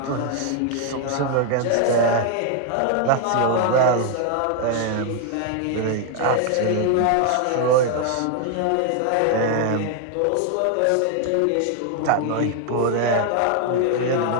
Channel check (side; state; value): both; different; correlation 0.00